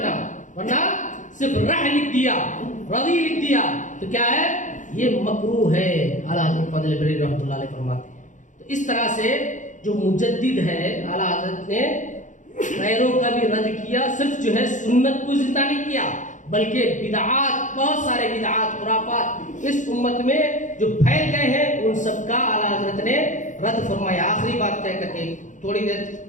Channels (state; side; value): late; right; 0.36 ms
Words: ورنہ صرف رح لکھ دیا، رضی لکھ دیا تو کیا ہے، یہ مکروہ ہے. اعلیٰ حضرت فضل بریلوی رحمۃ اللہ علیہ فرماتے ہیں. تو اس طرح سے جو مجدد ہے اعلیٰ حضرت نے غیروں کا بھی رد کیا، صرف جو ہے سنت کو زندہ نہیں کیا بلکہ بدعات، بہت سارے بدعات خرافات اس امت میں جو پھیل گئے ہیں ان سب کا اعلیٰ حضرت نے رد فرمایا. آخری بات کہہ کر کے تھوڑی دیر